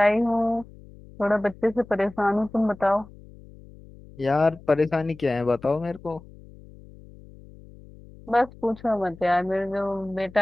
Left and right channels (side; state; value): left; noise; hum, 21 dB below the sound